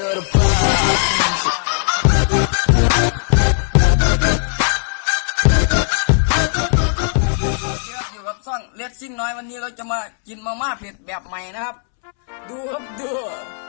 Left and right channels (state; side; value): silent; right; 67 dB below the other